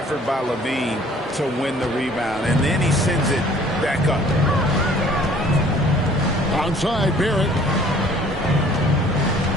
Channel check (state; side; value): normal; both; correlation 0.54